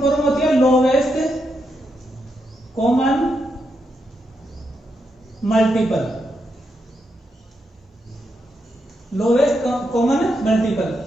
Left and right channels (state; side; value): normal; both; correlation 0.83